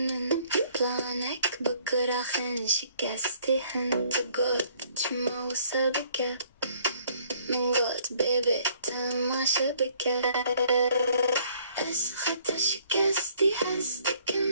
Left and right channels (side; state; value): both; inverted; correlation -0.62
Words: بلانك بكرة خن شكستي هنت قد شمو سبكة من قد بيبي تما شبكة أس خطر شكستي حزدكم